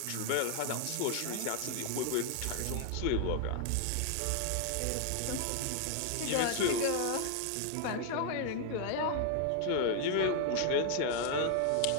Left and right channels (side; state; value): both; different; correlation 0.00